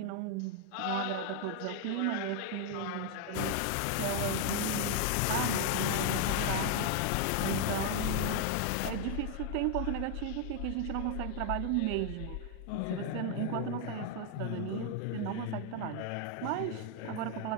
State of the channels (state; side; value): different; both; correlation 0.00